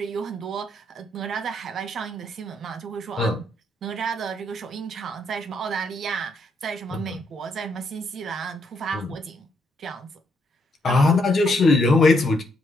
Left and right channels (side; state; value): both; normal; correlation 0.75